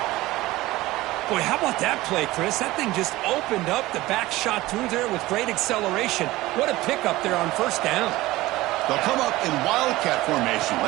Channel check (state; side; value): quieter; left; 18.3 dB